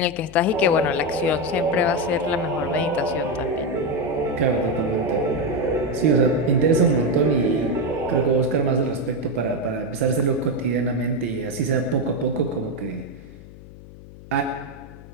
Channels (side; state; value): left; noise; hum, 18 dB below the sound